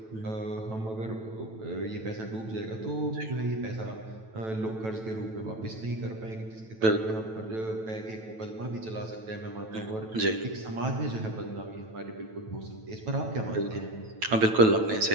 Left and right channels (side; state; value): left; late; 9.1 ms